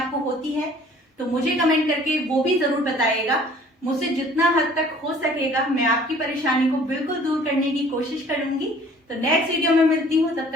होती है तो मुझे कमेंट करके वो भी जरूर बताइएगा। मुझसे जितना हद तक हो सकेगा मैं आपकी परेशानी को बिल्कुल दूर करने की कोशिश करूंगी। तो नेक्स्ट वीडियो में मिलती हूँ, तब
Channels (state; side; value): normal; both; correlation 0.53